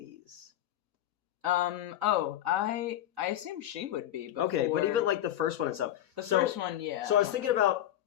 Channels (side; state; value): right; quieter; 12.3 dB